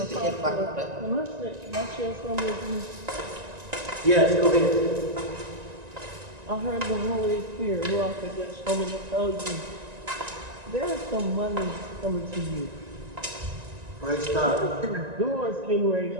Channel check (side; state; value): left; late; 1.9 ms